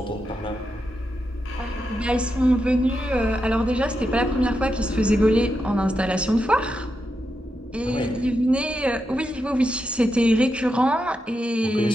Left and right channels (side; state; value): both; normal; correlation 0.86